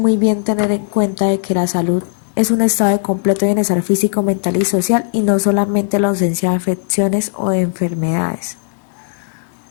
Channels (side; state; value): right; silent; 69 dB below the other